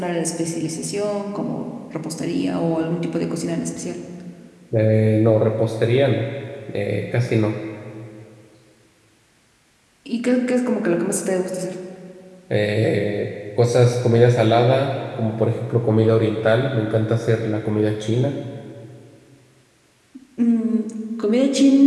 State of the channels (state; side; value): identical; both; correlation 1.00